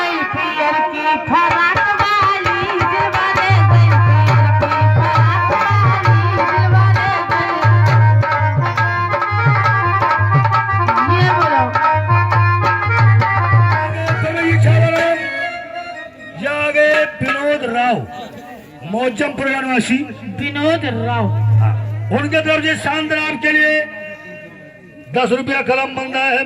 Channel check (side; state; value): both; identical; correlation 1.00